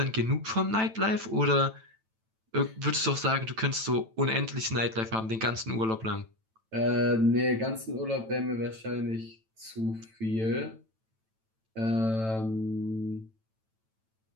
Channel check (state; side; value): late; left; 9.0 ms